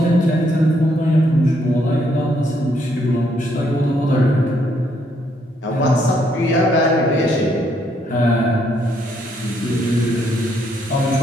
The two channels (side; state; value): both; normal; correlation 0.72